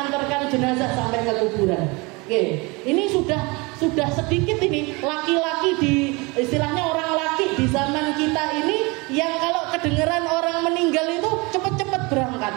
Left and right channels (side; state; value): left; quieter; 26.6 dB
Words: jenazah sampai ke kuburan. Ini sudah sedikit ini laki-laki di istilahnya orang laki di zaman kita ini yang kalau kedengeran orang meninggal itu cepet-cepet berangkat.